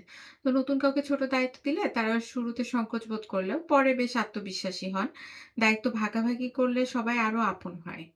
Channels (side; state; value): both; identical; correlation 1.00